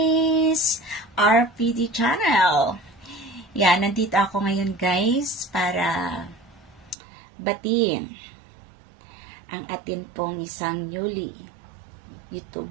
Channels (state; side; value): drops out; left; at 7.0 s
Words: RPD channel. Yan, nandito ako ngayon guys para batiin ang atin pong isang newly